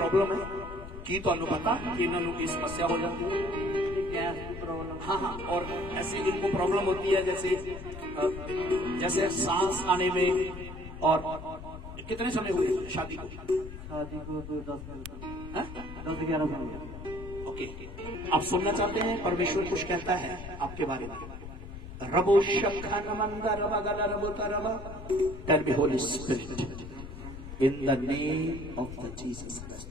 है? की तो पता कि इन्होंने की समस्या हो जाती है? क्या प्रॉब्लम? हाँ, और ऐसे इनको प्रॉब्लम होती है जैसे सांस आने में। और कितने समय हुए शादी को? 10-11 साल। ओके, आप सुनना चाहते हैं परमेश्वर कुछ कहता है आपके बारे में? रबो शखा नमंदा रबा गला रबो तरबा। Tell me holy spirit in the name of the Jesus Christ.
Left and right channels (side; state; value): left; noise; rumble, 11 dB below the sound